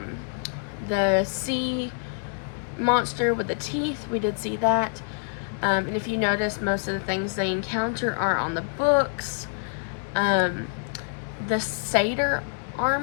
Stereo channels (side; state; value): right; silent; 61 dB below the other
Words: the sea monster with the teeth. We did see that. And if you notice, most of the things they encounter are on the books. The Satyr